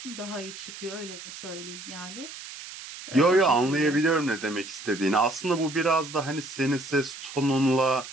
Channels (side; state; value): right; noise; hiss, 13 dB below the sound